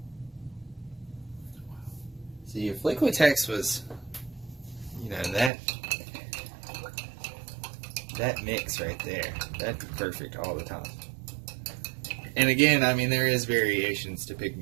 See, if Liquitex was, you know, that mix right there, that'd be perfect all the time. And again, I mean, there is variations to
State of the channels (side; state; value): left; drops out; at 5.5 s